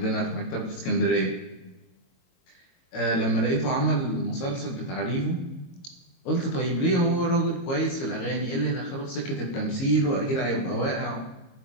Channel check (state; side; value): late; right; 22 ms